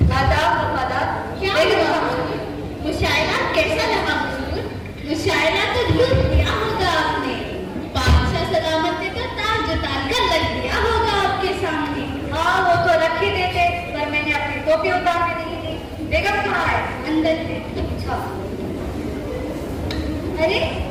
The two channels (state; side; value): identical; both; correlation 1.00